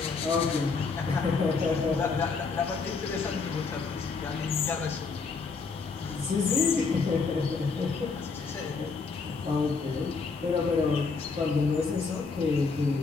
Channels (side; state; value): right; quieter; 4.6 dB